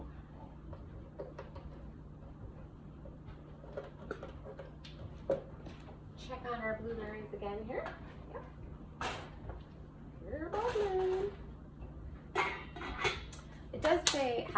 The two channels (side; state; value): both; identical; correlation 1.00